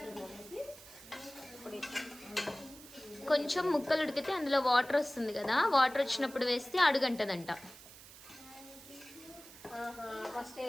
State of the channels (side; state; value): right; noise; hiss, 18 dB below the sound